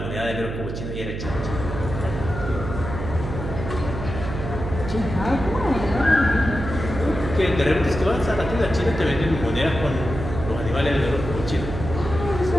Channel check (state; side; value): noise; right; hum, 6 dB below the sound